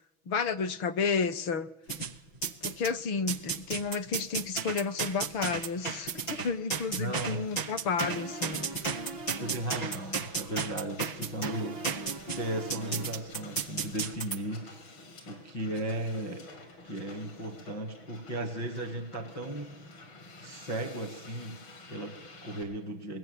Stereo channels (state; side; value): late; right; 6.1 ms